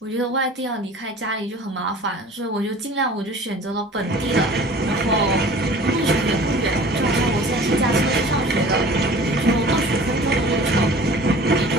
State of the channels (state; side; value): normal; both; correlation 0.44